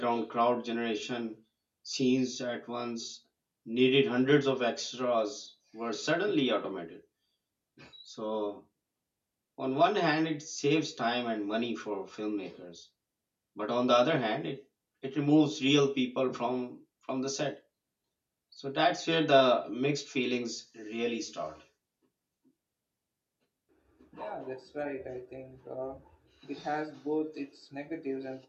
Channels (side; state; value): both; identical; correlation 1.00